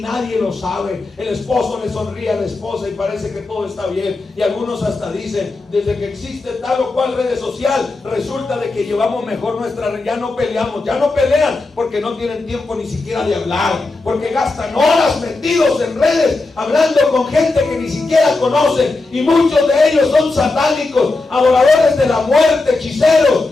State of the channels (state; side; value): quieter; right; 3.4 dB